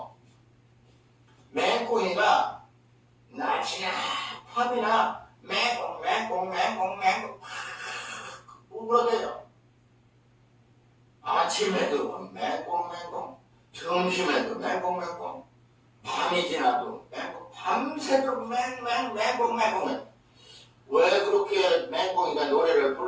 맹꽁이가 낮이나 밤이나 맹꽁 울어대요. 아침에도 맹꽁, 점심에도 맹꽁, 밤이 지나도 맹꽁, 밤새도록 맹꽁. 왜 그렇게 맹꽁이가 노래를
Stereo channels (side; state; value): both; identical; correlation 1.00